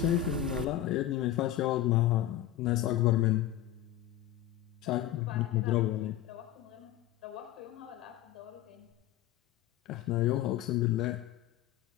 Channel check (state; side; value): quieter; right; 12.6 dB